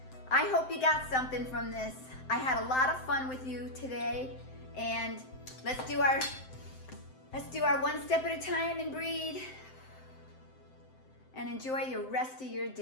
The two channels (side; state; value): right; late; 7.7 ms